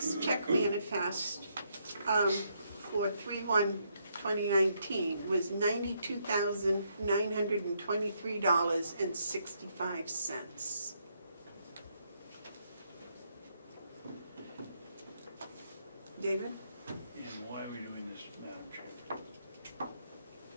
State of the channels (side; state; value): both; inverted; correlation -0.75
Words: check manifest for 3/1/2019 was $92,923.65. David? And why are we doing this, Madam Chair?